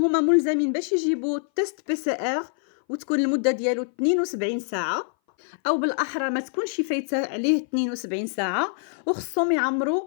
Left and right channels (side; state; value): right; silent; 59 dB below the other